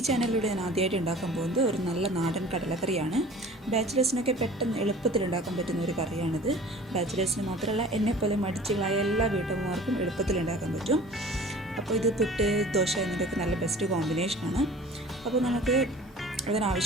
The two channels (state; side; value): normal; both; correlation 0.44